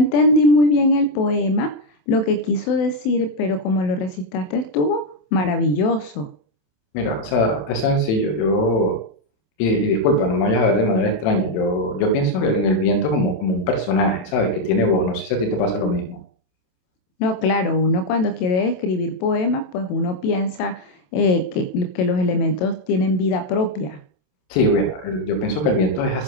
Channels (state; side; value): late; right; 27 ms